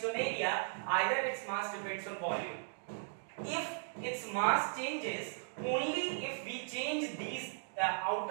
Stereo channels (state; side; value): silent; left; digital silence